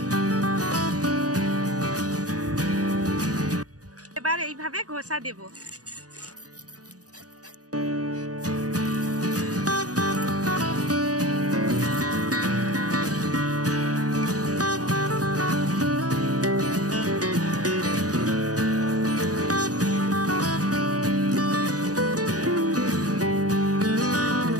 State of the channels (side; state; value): left; late; 0.67 ms